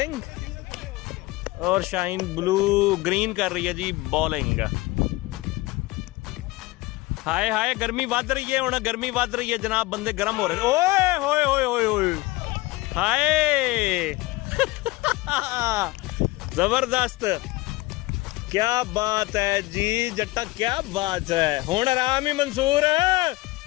और शाहीन ब्लू ग्रीन कर रही है जी बॉलिंग। हाय हाय, गर्मी वध रही है, हुण गर्मी वध रही है जनाब, बंदे गर्म हो रहे। ओए होए होए होए होए, हाय जबरदस्त, क्या बात है जी जट्टा, क्या बात है। हुण आराम ही मंसूर,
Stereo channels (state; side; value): quieter; right; 20.6 dB